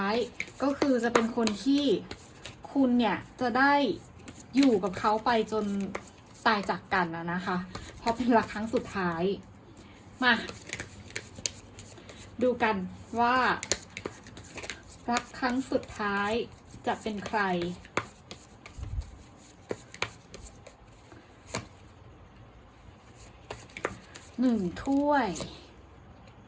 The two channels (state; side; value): identical; both; correlation 1.00